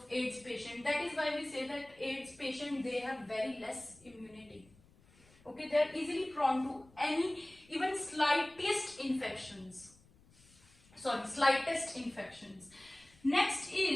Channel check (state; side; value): noise; left; rumble, 28 dB below the sound